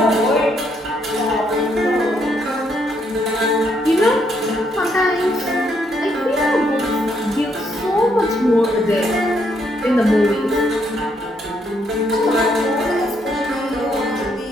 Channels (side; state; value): both; normal; correlation 0.74